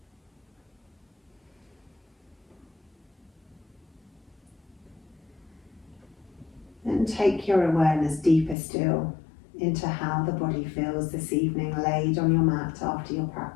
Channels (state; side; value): drops out; right; at 8.6 s